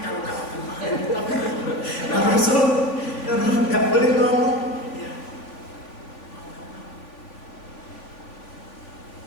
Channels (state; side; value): late; right; 3.4 ms